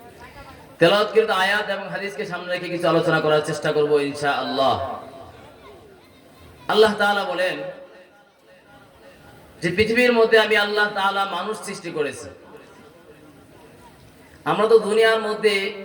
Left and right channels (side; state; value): both; identical; correlation 1.00